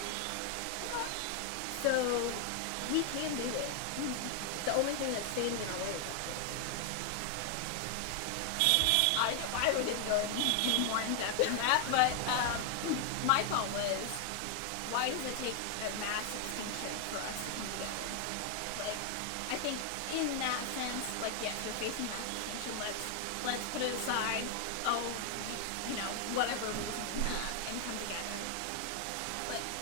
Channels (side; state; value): both; different; correlation 0.00